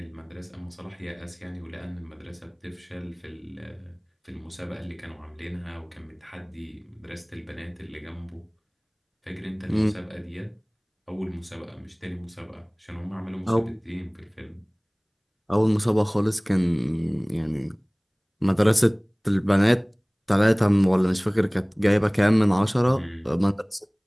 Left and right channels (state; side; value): identical; both; correlation 1.00